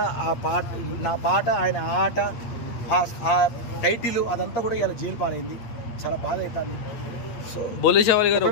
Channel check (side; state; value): right; late; 8.6 ms